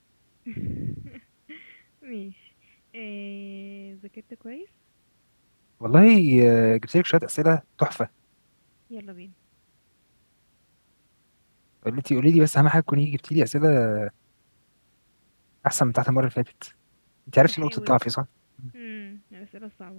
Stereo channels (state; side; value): inverted; both; correlation -1.00